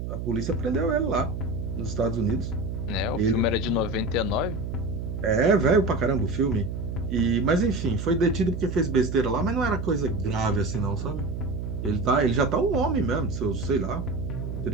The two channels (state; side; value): noise; right; hum, 5 dB below the sound